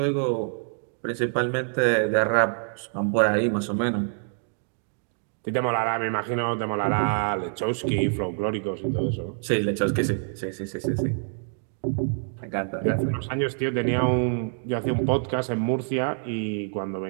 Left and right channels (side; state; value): left; silent; digital silence